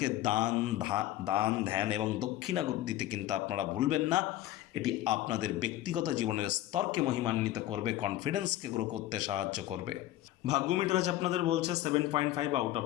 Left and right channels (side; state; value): right; quieter; 14.3 dB